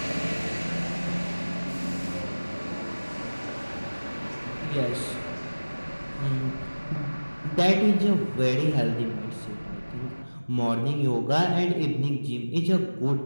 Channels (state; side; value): inverted; both; correlation -1.00